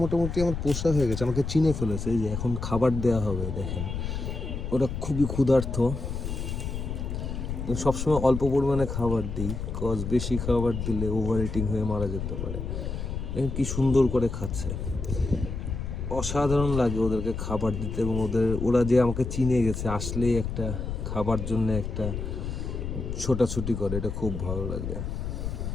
মোটামুটি আমার পোষা হয়ে গেছে, আমাকে চিনে ফেলেছে। এই যে এখন খাবার দেওয়া হবে, দেখেন ওরা খুবই ক্ষুধার্ত। সবসময় অল্প পরিমাণে খাবার দিই, কজ বেশি খাবার দিলে ওভার ইটিং হয়ে মারা যেতে পারে। দেখেন কি সুন্দর করে খাচ্ছে, অসাধারণ লাগে ওদেরকে খাবার দিতে। এবং ওরা যে আমাকে চিনে গেছে, আসলেই একটা খাবার জন্য একটা ছোটাছুটি করে, এটা খুব ভালো লাগে।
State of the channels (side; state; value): left; noise; rumble, 4 dB below the sound